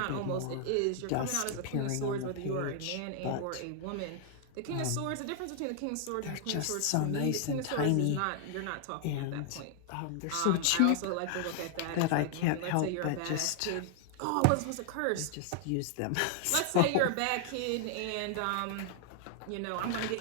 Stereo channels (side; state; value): both; different; correlation 0.00